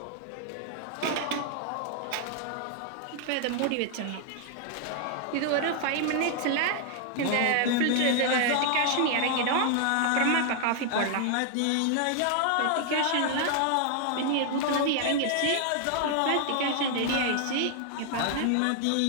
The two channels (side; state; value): both; different; correlation 0.00